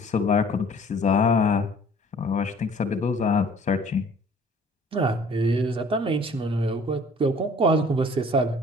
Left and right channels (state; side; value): normal; both; correlation 0.52